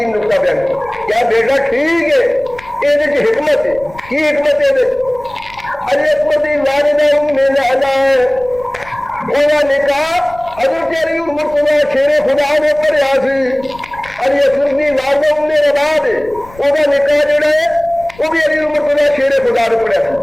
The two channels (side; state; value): left; noise; rumble, 22 dB below the sound